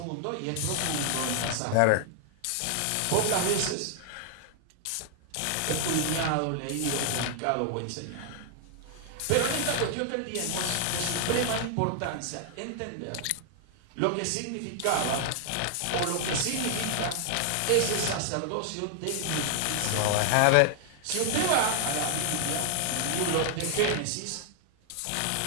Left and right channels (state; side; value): different; both; correlation 0.00